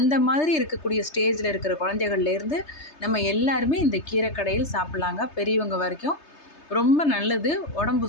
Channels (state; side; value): late; right; 3.3 ms